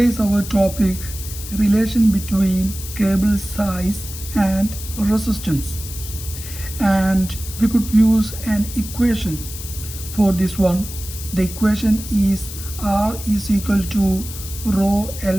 our topic relation between cable size and resistance. And we could use an equation for this one. The equation is R is equal to rho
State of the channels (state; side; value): noise; left; hiss, 11 dB below the sound